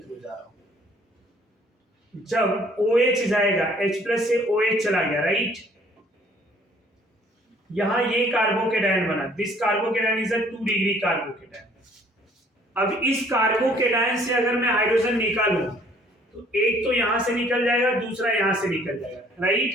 जा रहा हूं। जब OH जाएगा, H+ से OH चला गया, राइट? यहां ये कार्बोकेटायन बना, this carbocation is a 2 degree carbocation. अब इस कार्बोकेटायन से अगर मैं हाइड्रोजन निकालूं तो एक तो यहां से निकल जाएगा, दूसरा यहां से निकल जाएगा,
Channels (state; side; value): normal; both; correlation 0.59